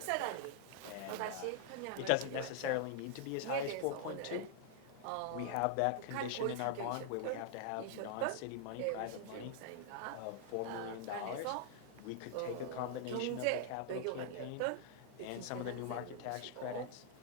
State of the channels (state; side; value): different; both; correlation -0.01